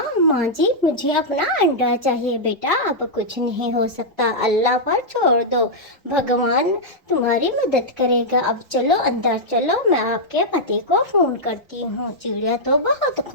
जी, मुझे अपना अंडा चाहिए। बेटा, अब कुछ नहीं हो सकता, अल्लाह पर छोड़ दो, भगवान तुम्हारी मदद करेगा। अब चलो अंदर चलो, मैं आपके पति को फोन करती हूँ। चिड़िया तो बहुत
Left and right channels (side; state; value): both; normal; correlation -0.07